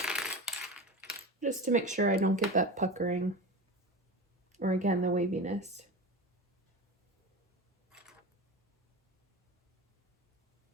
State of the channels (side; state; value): both; normal; correlation 0.27